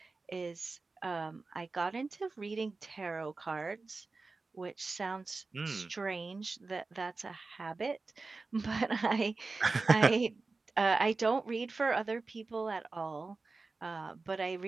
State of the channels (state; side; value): quieter; left; 3.8 dB